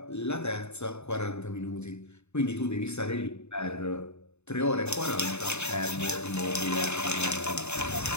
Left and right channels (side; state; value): right; late; 0.81 ms